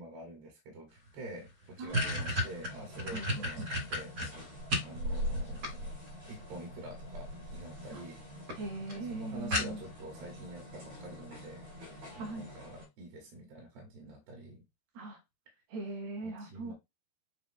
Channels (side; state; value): left; late; 12 ms